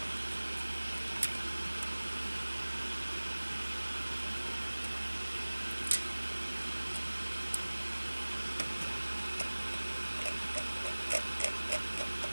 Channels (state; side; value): inverted; both; correlation -1.00